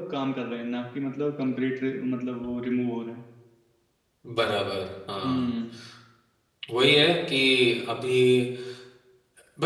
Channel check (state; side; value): identical; both; correlation 1.00